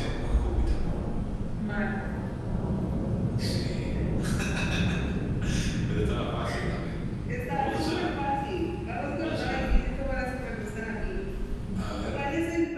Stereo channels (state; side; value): identical; both; correlation 1.00